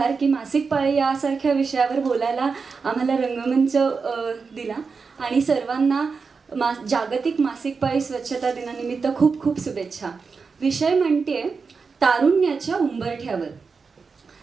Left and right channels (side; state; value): left; quieter; 5.0 dB